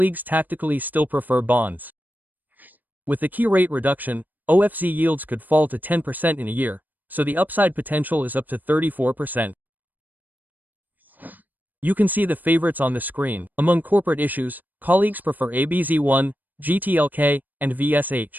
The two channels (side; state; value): left; late; 0.086 ms